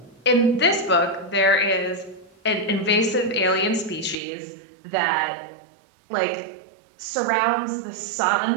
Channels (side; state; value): left; drops out; at 4.2 s